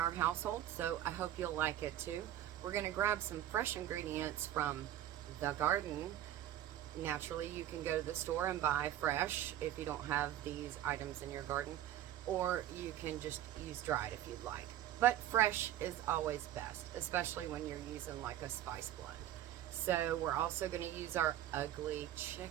household, so I hope you'll like it too. We're gonna grab some fresh ingredients from the garden. Naturally, you can go to the store and buy fresh if you don't have these items in your garden, or you can just use dried if you'd like. But fresh is always best, especially when you're using like a spice blend. So we're also going to use our ugly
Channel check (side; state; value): left; quieter; 12.1 dB